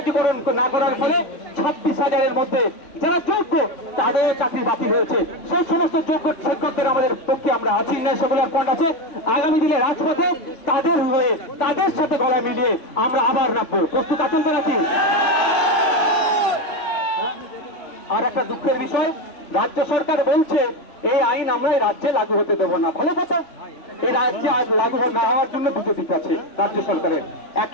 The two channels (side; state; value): right; late; 3.5 ms